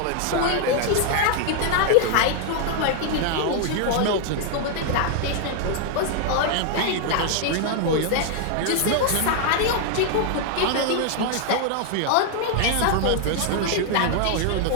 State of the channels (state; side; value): different; both; correlation 0.00